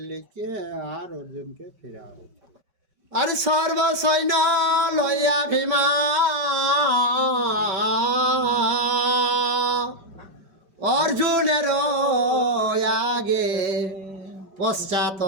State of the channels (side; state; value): left; late; 5.2 ms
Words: লিখে আর অর্জুনকে ফেরা হয়েছে। আর সর্বসৈন্য লইয়া ভীমা অর্জুনের আগে পশ্চাৎ